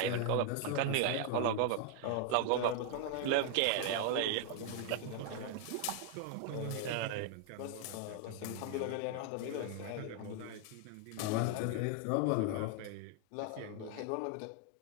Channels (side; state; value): both; different; correlation 0.00